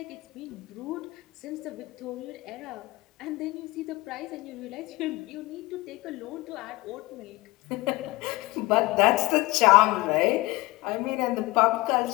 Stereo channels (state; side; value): quieter; right; 21.5 dB